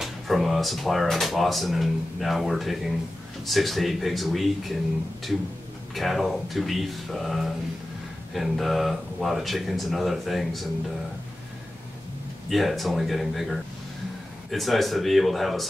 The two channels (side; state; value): both; normal; correlation 0.94